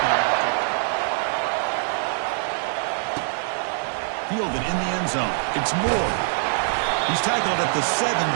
Fielded in the end zone. It's Moore. He's tackled at the 17,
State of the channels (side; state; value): left; silent; digital silence